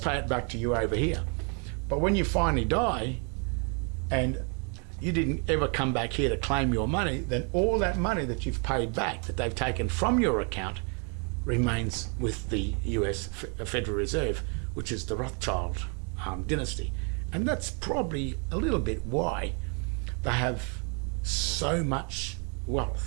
it back to you over here. But when you finally die and you didn't ever come back here to claim your money, then all that money that you've paid back, that they've taken from your account, remains with the US Federal Reserve, which is the Rothschild dynasty. And that's probably a little bit why they have so much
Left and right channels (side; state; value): left; quieter; 37.6 dB